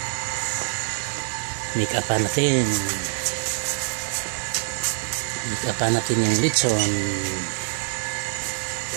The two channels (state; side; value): silent; left; digital silence